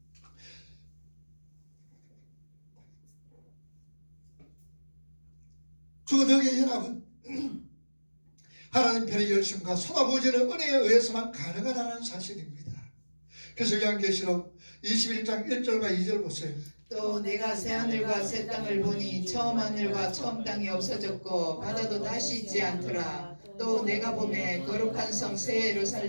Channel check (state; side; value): inverted; both; correlation -1.00